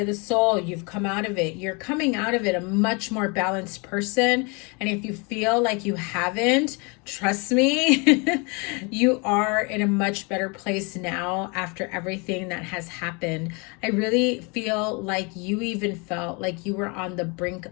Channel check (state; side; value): quieter; right; 31.1 dB